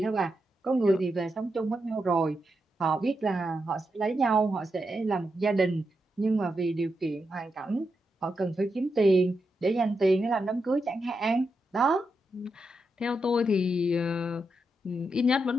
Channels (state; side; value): normal; both; correlation 0.85